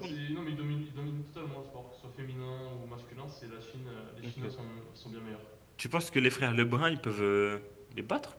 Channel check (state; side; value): identical; both; correlation 1.00